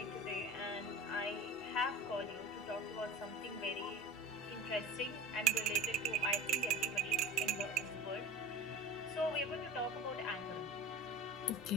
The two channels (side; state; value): both; normal; correlation 0.36